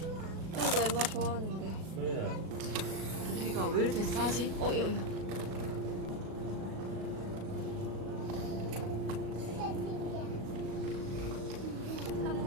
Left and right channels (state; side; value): late; left; 37 ms